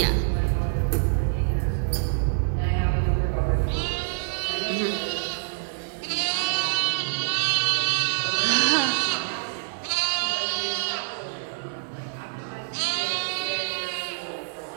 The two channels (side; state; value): left; silent; digital silence